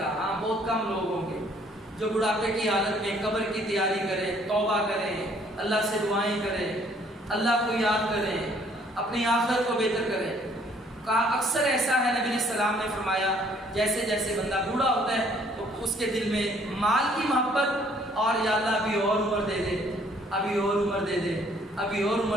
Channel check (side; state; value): both; normal; correlation 0.62